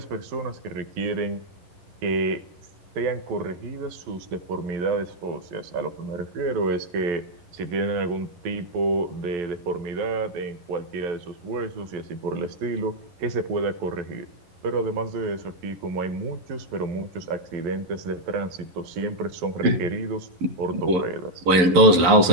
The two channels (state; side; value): late; left; 11 ms